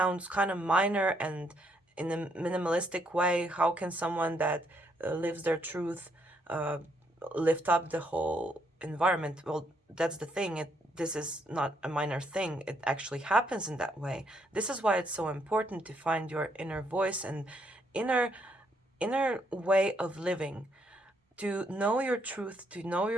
kind of minor and in a minimalistic way. How can someone that lives their truth lift up the whole environment? Well, that's the thing. This is not a minor thing. It actually happens in that way. This is why it's so important to find your inner voice and inner way of living, to know your truth, to know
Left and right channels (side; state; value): both; normal; correlation 0.73